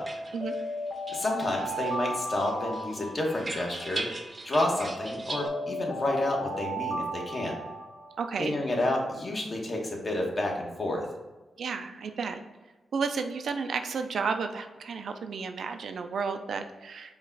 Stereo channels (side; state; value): both; normal; correlation 0.82